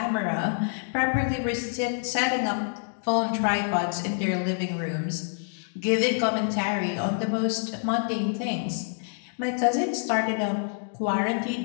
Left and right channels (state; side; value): silent; right; digital silence